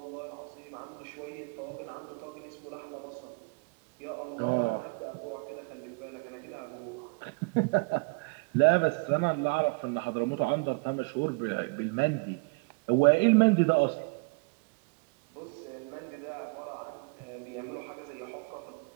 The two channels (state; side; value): quieter; left; 31.2 dB